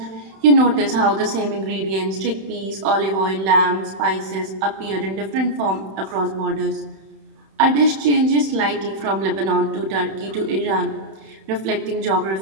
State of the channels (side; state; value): left; late; 31 ms